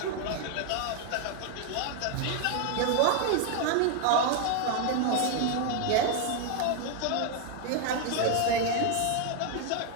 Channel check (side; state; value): both; different; correlation 0.01